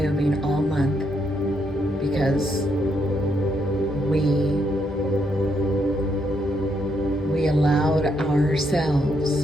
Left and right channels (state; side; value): normal; both; correlation 0.77